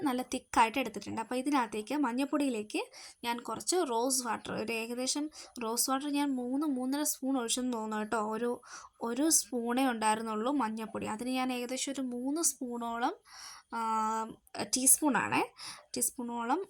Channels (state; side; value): identical; both; correlation 1.00